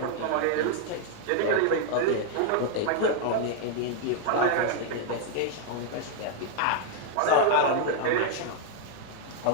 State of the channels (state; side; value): different; both; correlation 0.00